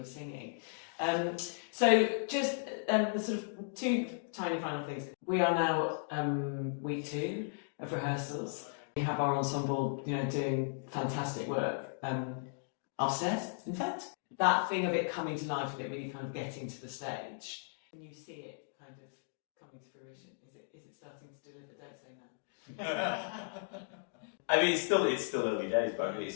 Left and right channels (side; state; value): right; silent; digital silence